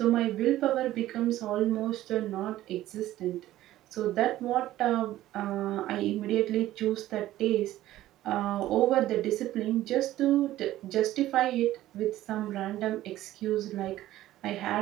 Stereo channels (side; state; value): left; quieter; 14.6 dB